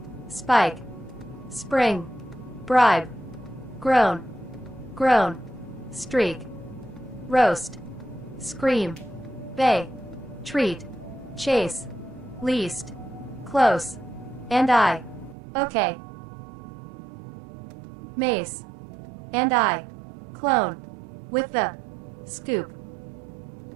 Spike. Spring. Bribe. Groan. Groan. Streak. Roast. Scream. Bay. Treat. Chase. Least. Close. And I. Okay. Mace. And I. Clone. With the. Scoop.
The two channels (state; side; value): drops out; left; at 15.4 s